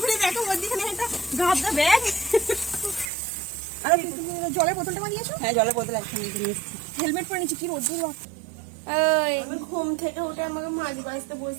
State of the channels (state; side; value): drops out; left; at 3.1 s